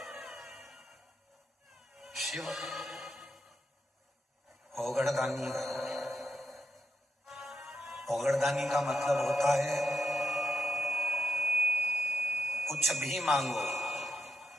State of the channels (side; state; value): both; normal; correlation 0.83